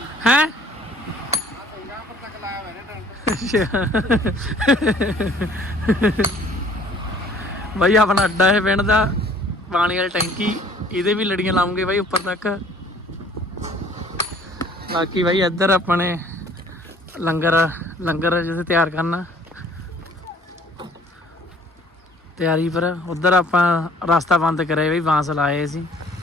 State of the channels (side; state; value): both; normal; correlation 0.55